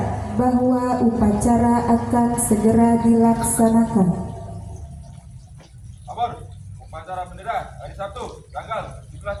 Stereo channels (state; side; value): identical; both; correlation 1.00